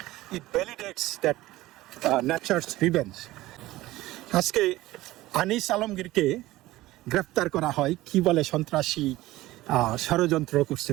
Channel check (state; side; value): quieter; left; 17.4 dB